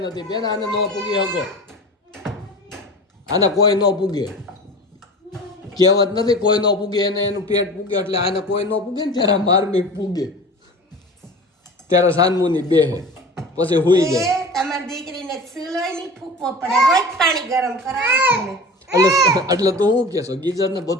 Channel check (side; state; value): both; normal; correlation 0.36